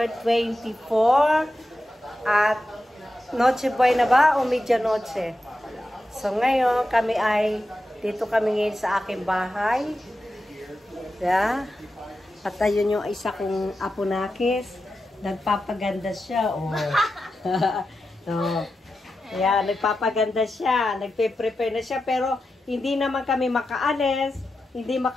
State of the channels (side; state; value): both; normal; correlation 0.90